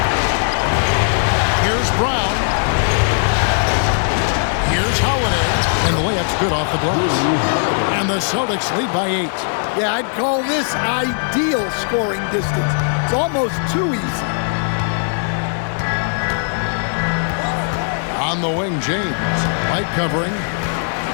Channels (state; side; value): silent; right; digital silence